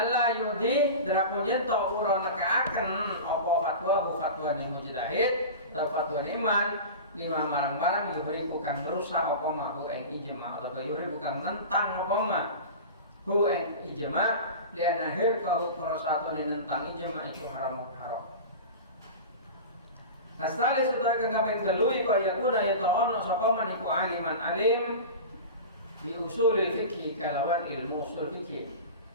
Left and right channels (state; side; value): inverted; both; correlation -0.30